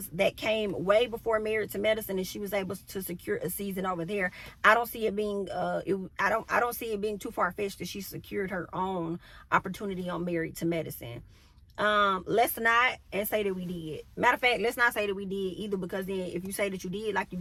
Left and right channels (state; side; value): identical; both; correlation 1.00